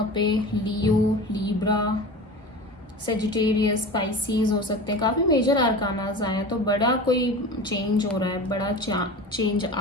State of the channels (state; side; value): normal; both; correlation 0.33